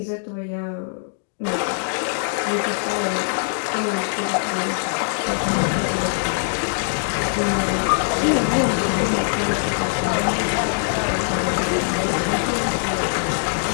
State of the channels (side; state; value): right; silent; digital silence